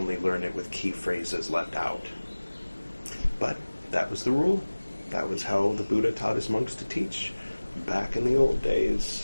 learn it with key phrases left out. But that was the rule. That was how the Buddha taught his monks to teach back in the old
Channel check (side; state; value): both; inverted; correlation -1.00